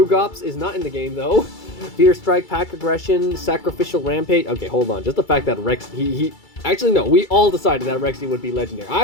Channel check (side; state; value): right; late; 2.3 ms